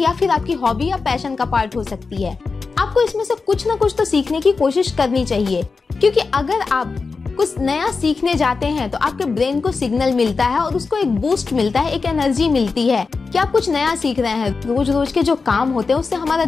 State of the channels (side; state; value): right; quieter; 4.5 dB